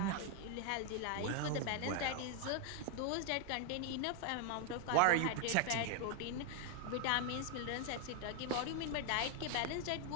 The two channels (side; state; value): both; different; correlation 0.01